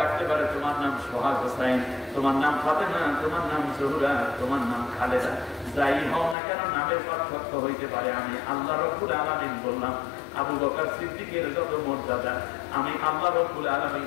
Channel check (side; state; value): right; drops out; at 6.4 s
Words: রাখতে পারে তোমার নাম সোহাগ হোসাইন, তোমার নাম ফাতেমা, তোমার নাম জহুরা, তোমার নাম খালেদা, যাই হও না কেন নামের পার্থক্য হইতে পারে, আমি আল্লাহ রাব্বুল আলামিন বললাম আবু বকর সিদ্দিকের যত মর্যাদা, আমি আল্লাহ রাব্বুল আলামিন